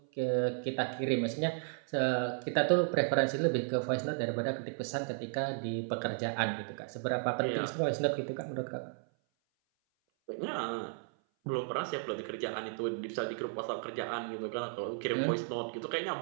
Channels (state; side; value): silent; left; 55 dB below the other